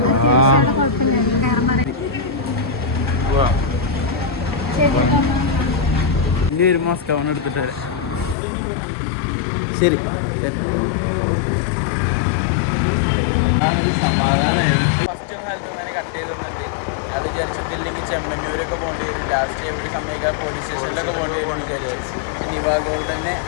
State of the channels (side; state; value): right; drops out; at 8.3 s